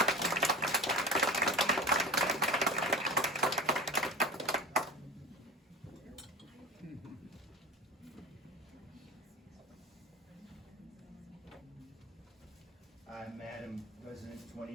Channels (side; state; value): both; normal; correlation 0.31